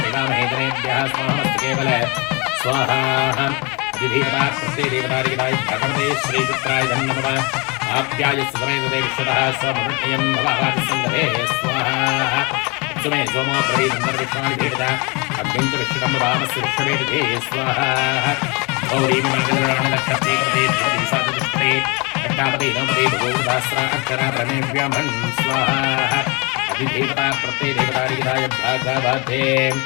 स्वाहामस्तकेवल स्वाहा अधिदेवता प्रत्ययदेवतारिदाय भगवते श्रीचित्राय नमः आप्याय सुसमेतते विश्वतः स्वमृत्यं भवादिसङ्गते स्वाहा सुमे सोमो प्रवीदन्तर्विश्वानि भेदता अग्निञ्च विश्वकं वामस्य विश्ववेदते स्वाहा गौरीं मङ्गलराणलक्षते कृते धिपति साधुष्टे अट्टापते नवपते भगोदास्रा अक्षरा ब्रह्मेभ्यमन् स्वाहा अधिदेवता प्रत्ययदेवतारिदाय भागवते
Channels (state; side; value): quieter; right; 29.0 dB